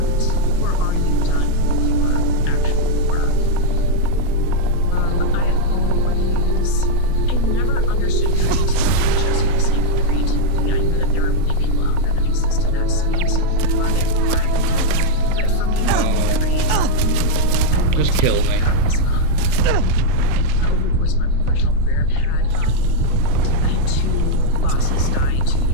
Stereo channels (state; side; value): different; both; correlation -0.01